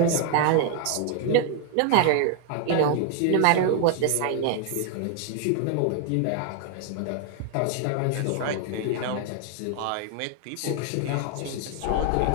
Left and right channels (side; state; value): both; different; correlation 0.00